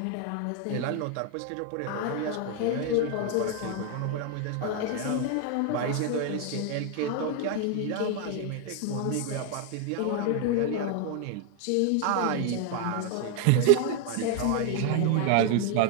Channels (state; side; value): different; both; correlation 0.01